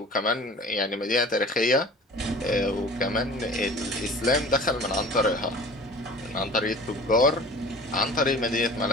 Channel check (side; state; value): both; normal; correlation 0.43